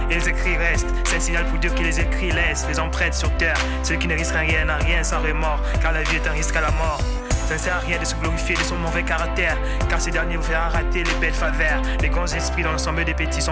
et les écrits restent, c'est un signal pour Dieu que les écrits laissent les empreintes sur terre. Celui qui ne risque rien n'a rien sans remords, car la vie est un risque à la mort. Ça ne sert à rien de se glorifier de son mauvais caractère, car ces derniers vous feront rater les belles faveurs. Les grands esprits dans l'ensemble des petits sont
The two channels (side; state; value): both; identical; correlation 1.00